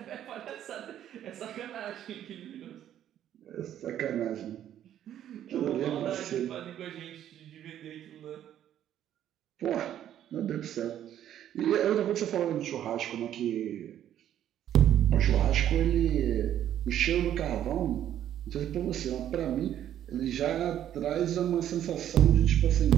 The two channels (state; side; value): quieter; left; 11.0 dB